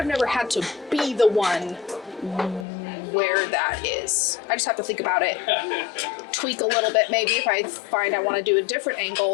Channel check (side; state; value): right; drops out; at 2.7 s